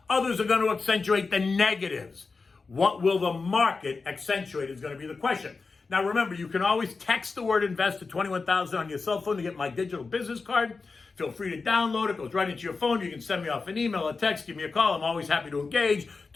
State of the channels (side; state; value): right; quieter; 4.3 dB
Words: others are going to accentuate the negatives. What will the market accentuate is going to be the question. Now remember, you can always text the word invest to 21,000 on your cell phone to get my digital business card. Feel free to download it. It goes right into your phone. You can send me off an email, a text, give me a call. I'm always happy to engage,